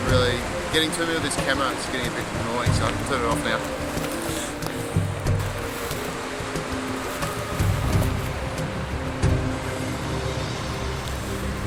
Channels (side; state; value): both; identical; correlation 1.00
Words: really getting to me with this camera. It's getting a bit annoying, so I can turn it off now.